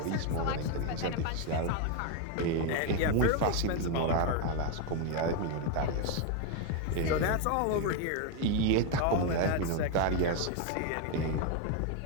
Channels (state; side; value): different; both; correlation 0.01